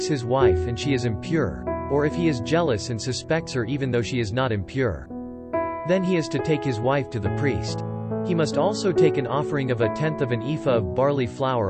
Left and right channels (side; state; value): both; identical; correlation 1.00